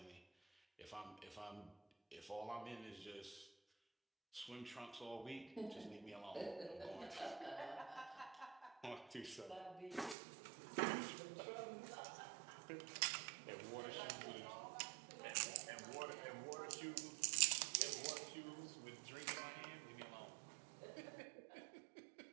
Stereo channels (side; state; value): left; drops out; at 10.2 s